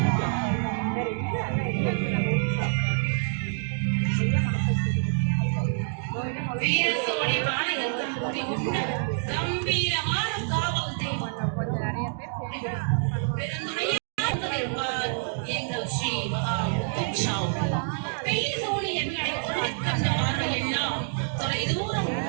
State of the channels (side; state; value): left; silent; digital silence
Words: வீரசோழி பாளையத்தில் குடிகொண்ட கம்பீரமான காவல் தெய்வம் பெருந்துணையார் எங்கள் ஸ்ரீ மகா முத்துச்சாமி. பெயர் சோழி எங்களை கண்ட பார்வையெல்லாம் தொலை தூரம்